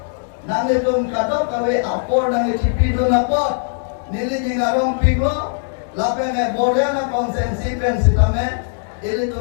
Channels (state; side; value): silent; right; digital silence